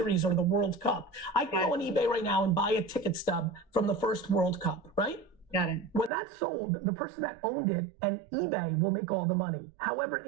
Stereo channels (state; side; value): drops out; left; at 6.1 s